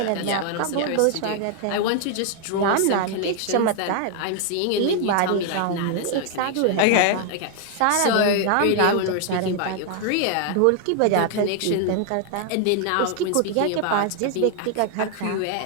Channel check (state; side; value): different; both; correlation 0.00